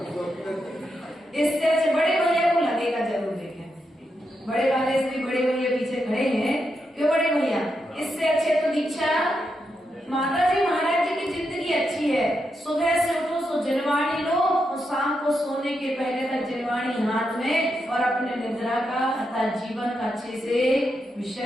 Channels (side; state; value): both; normal; correlation 0.84